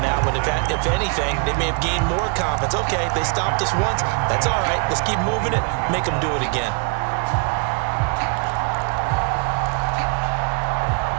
one. If anything, they may have gained more confidence. Okay, they stopped us once. That's all right. Let's keep moving it. Make them do it again.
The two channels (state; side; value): quieter; left; 37.0 dB